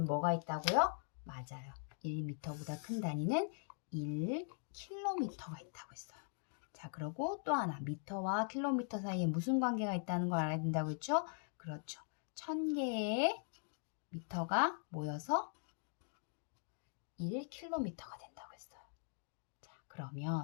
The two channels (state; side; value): silent; right; 50 dB below the other